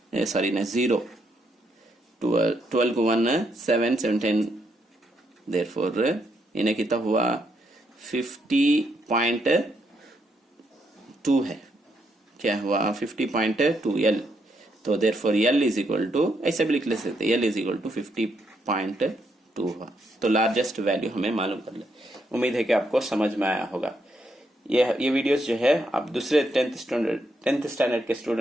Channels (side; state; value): both; normal; correlation 0.77